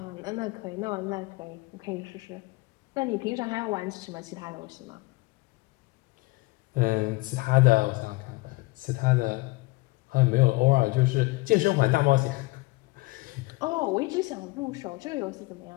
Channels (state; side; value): quieter; right; 23.1 dB